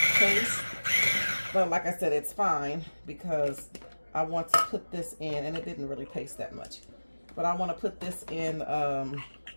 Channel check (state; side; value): inverted; both; correlation -1.00